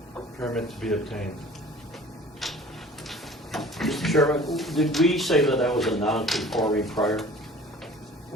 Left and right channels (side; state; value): both; normal; correlation 0.46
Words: Permit to be obtained. Mr. Chairman, did we say that that was a non-conforming prior?